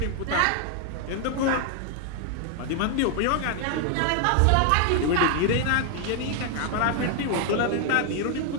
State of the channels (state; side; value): different; both; correlation 0.00